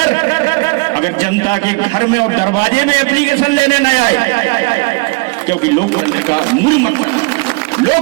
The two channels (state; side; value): quieter; left; 29.7 dB